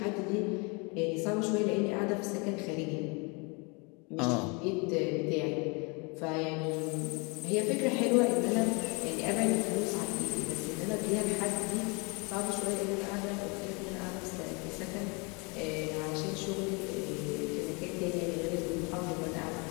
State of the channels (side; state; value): right; quieter; 30.7 dB